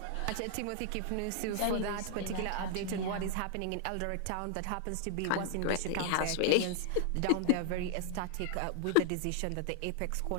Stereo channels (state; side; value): different; both; correlation 0.00